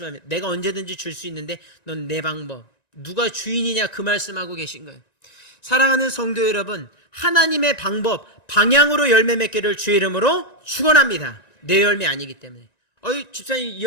내가 언제든지 줄 수 있는데 넌 내 방법, 누가 주인이냐 그 말씀하고 계신 거예요. 사랑하는 성도 여러분, 하나님의 방법, 방향으로 열매 맺기를 주의 이름으로 축원합니다. 내 열매 아니기 때문에. 집사님 이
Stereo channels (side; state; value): right; late; 1.9 ms